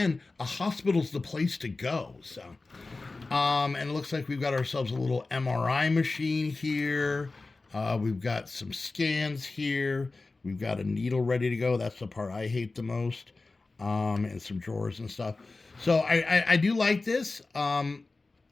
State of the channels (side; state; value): right; quieter; 3.5 dB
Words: a hospital's the place to go. So, and it looks like we've got ourselves a little MRI machine here. We've got some scans here. We've got a needle ready to go. That's the part I hate the most. And some drawers and stuff. So I do like this. I